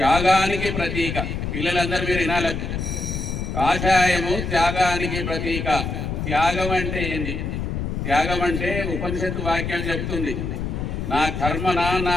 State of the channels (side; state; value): left; noise; rumble, 3 dB below the sound